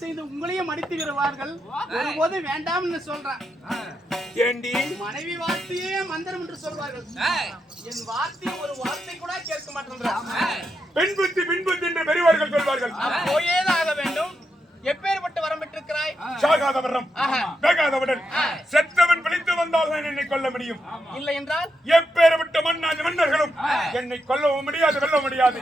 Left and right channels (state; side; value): normal; both; correlation 0.84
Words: செய்து உங்களையும் மடித்து விடுவார்கள். ஒருபோது வேண்டாம்னு சொல்றேன். ஏண்டி மனைவி வார்த்தையே மந்திரம் என்று சொல்வார்கள். என் வார்த்தை ஒரு வார்த்தை கூட கேட்க மாட்டேன். பெண் புத்தி என்று பெரியவர்கள் சொல்வார்கள். போயேதான் ஆக வேண்டும். எப்பேற்பட்ட வரம் பெற்றிருக்கிறாய்? சாகாத வரம், வேகாதவுடன் செத்தவன் பிழைத்து வந்தால் தான் என்னை கொல்ல முடியும். இல்லை என்றால் எப்பேற்பட்ட மன்னர்களும் என்னை கொல்லவும் முடியாது, வெல்ல முடியாது.